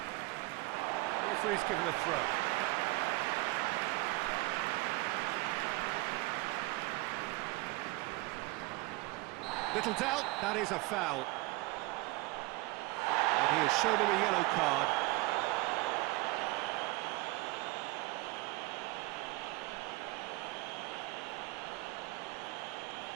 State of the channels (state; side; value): quieter; left; 21.9 dB